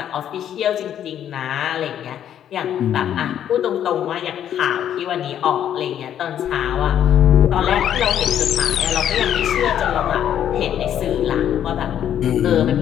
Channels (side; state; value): right; quieter; 10.1 dB